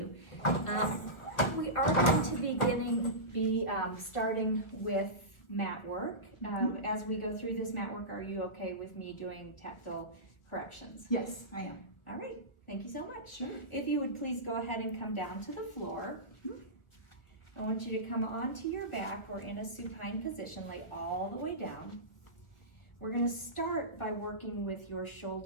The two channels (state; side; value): late; right; 1.6 ms